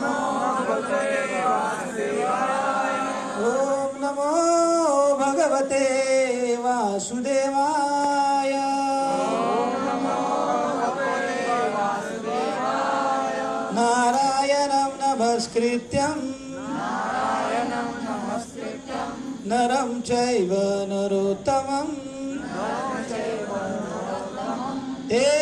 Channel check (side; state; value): both; identical; correlation 1.00